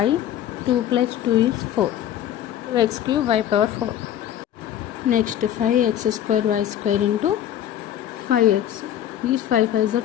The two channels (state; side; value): quieter; right; 10.9 dB